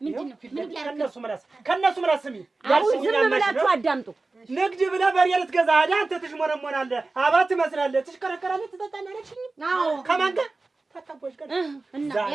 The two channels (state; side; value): quieter; left; 3.5 dB